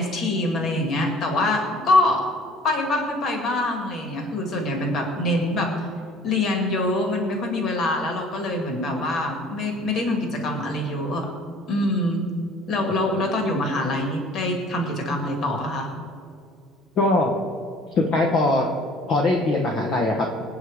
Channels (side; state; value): both; normal; correlation 0.52